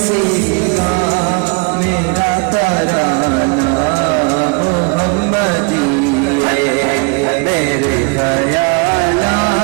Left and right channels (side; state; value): left; quieter; 31.9 dB